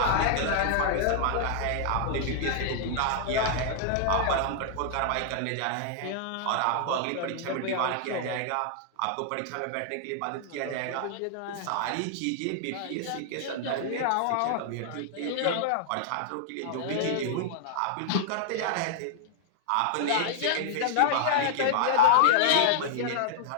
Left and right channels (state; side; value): different; both; correlation -0.01